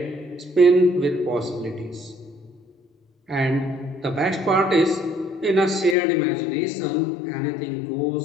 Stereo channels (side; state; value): right; drops out; at 6.0 s